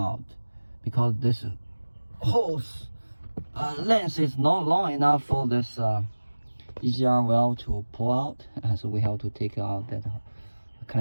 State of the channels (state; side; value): inverted; both; correlation -1.00